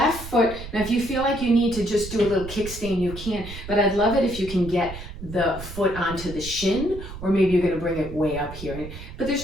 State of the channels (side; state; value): right; noise; rumble, 11 dB below the sound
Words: foot, now if you feel like you need to just do a little kickstand, you can, but I'd love it if you can get the foot onto the shin, or maybe you're going to bring it way up here. But